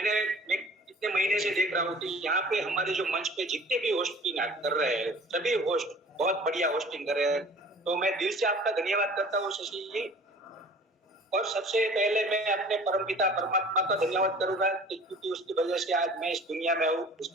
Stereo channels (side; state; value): both; normal; correlation 0.46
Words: इतने महीने से देख रहा हूँ कि यहाँ पे हमारे जो मंच पे जितने भी होस्टिंग कर रहे हैं, सभी होस्ट बहुत बढ़िया होस्टिंग कर रहे हैं। तो मैं दिल से आपका धन्यवाद करता हूँ शशि जी। और सबसे पहले मैं अपने परमपिता परमात्मा का धन्यवाद करूंगा, क्योंकि उसकी वजह से आज मैं इस दुनिया में हूँ।